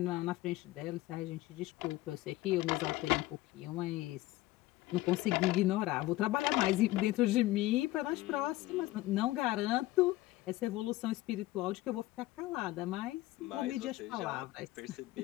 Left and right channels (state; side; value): quieter; right; 17.4 dB